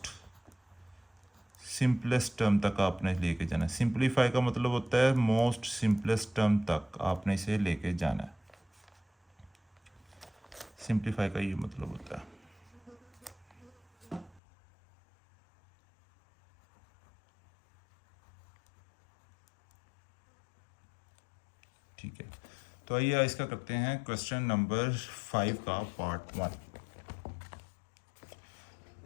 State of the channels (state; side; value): drops out; right; at 14.4 s